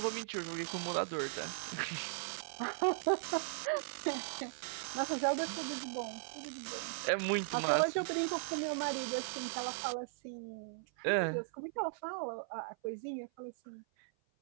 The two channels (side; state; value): left; silent; 52 dB below the other